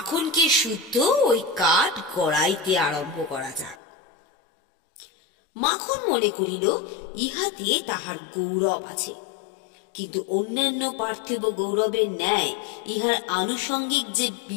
শুদ্ধ ওই কাঠ গড়াইতে আরম্ভ করা যাক। মাখন মনে করিল ইহাতে তাহার গৌরব আছে, কিন্তু অন্যান্য পার্থিব গৌরবের ন্যায় ইহার আনুষঙ্গিক যে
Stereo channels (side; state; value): right; drops out; at 3.8 s